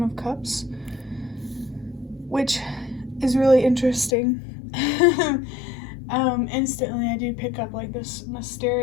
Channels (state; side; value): drops out; right; at 4.2 s